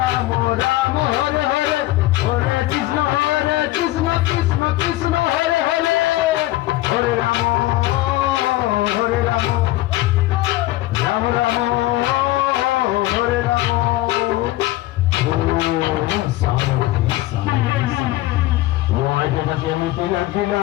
রাম হরে হরে হরে কৃষ্ণ কৃষ্ণ কৃষ্ণ হরে হরে হরে রাম রাম রাম হরে রাম কেমিতি লাগিলা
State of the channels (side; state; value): right; quieter; 17.1 dB